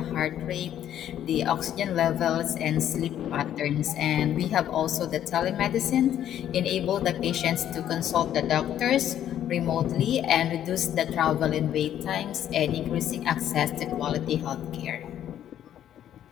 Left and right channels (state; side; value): quieter; right; 10.9 dB